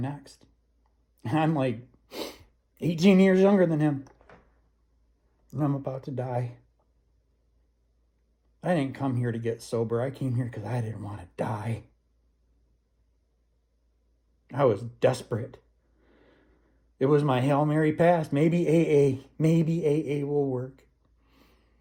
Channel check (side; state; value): both; identical; correlation 1.00